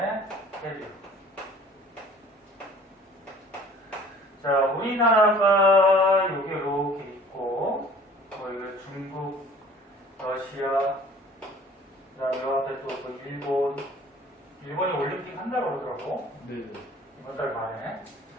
해류. 자, 우리나라가 여기 이렇게 있고, 뭐 이거 중국, 러시아, 그다음에 요 앞에 또 일본이 올림픽 한다고 그러더라고. 네네. 이번 달 말에.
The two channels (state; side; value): normal; both; correlation 0.50